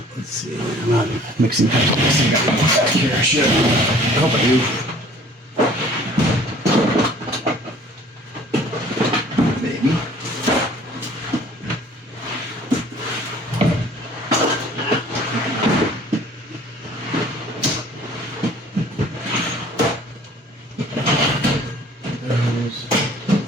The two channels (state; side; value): normal; both; correlation 0.52